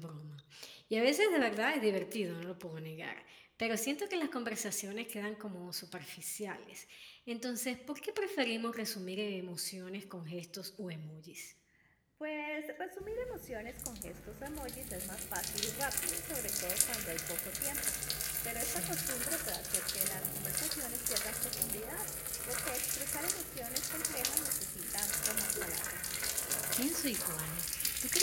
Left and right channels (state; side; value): identical; both; correlation 1.00